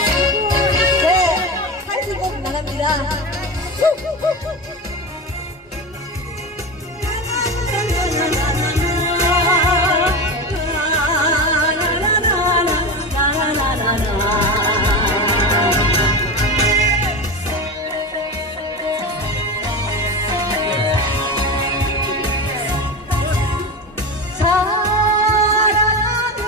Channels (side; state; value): both; normal; correlation 0.23